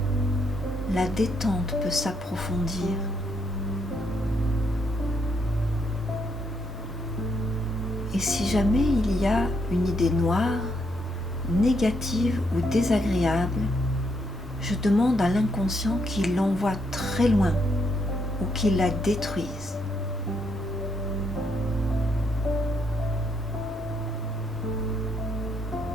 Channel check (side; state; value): both; normal; correlation 0.76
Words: la détente peut s'approfondir. Et si jamais il y a une idée noire, négative ou désagréable, je demande à l'inconscient qu'il l'envoie très loin ou qu'il la détruise.